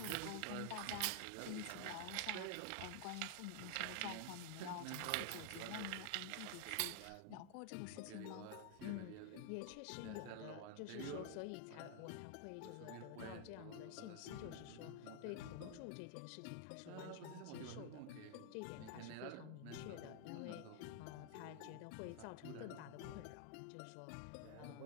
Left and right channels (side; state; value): both; different; correlation 0.00